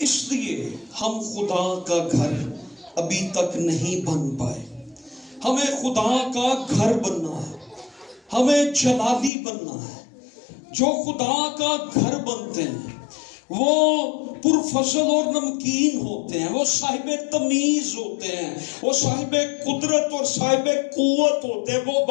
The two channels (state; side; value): drops out; right; at 9.3 s